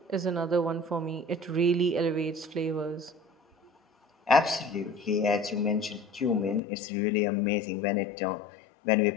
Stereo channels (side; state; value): right; drops out; at 6.6 s